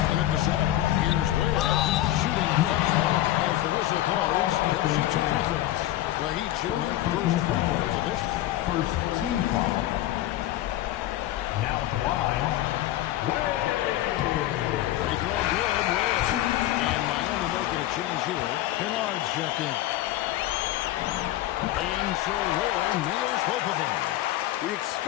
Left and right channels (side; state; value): right; quieter; 14.6 dB